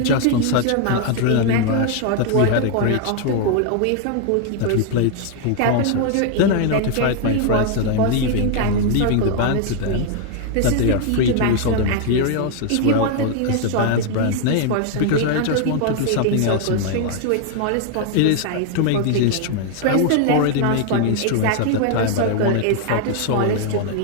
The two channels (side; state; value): both; different; correlation 0.00